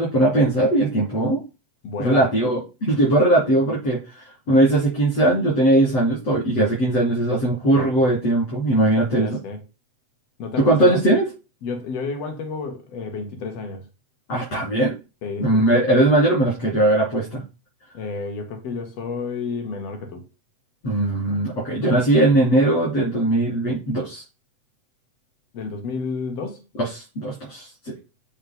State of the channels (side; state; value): right; late; 7.9 ms